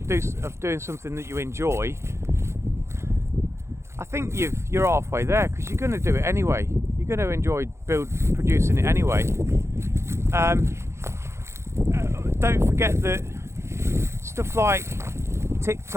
doing something that you enjoy, I think you're halfway there, because you're going to do it anyway. You're going to enjoy producing it anyway. Don't forget that stuff like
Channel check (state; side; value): late; left; 0.13 ms